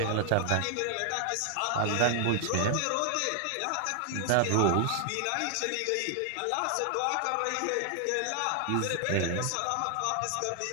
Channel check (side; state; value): both; different; correlation 0.00